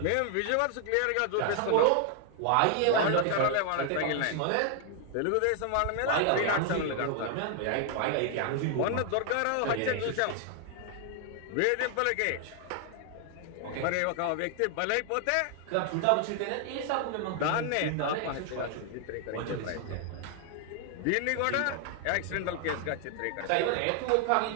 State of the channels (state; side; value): different; both; correlation 0.00